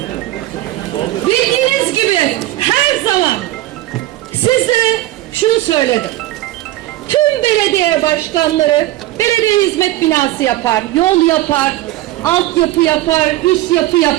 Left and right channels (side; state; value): left; quieter; 16.0 dB